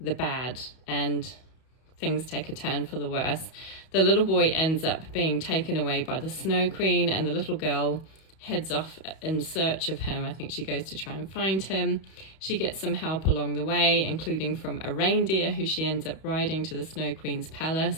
bad, and things take a turn for the worse. The little boy ends up being taken away by the Snow Queen, and the little girl heads off in search of him. I think she goes to try and find him. She gets some help along the way, including from a reindeer who she ends up riding to the Snow Queen's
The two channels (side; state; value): right; late; 31 ms